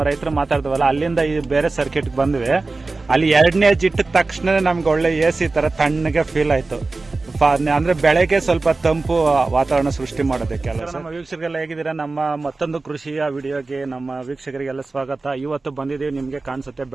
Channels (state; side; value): quieter; left; 3.6 dB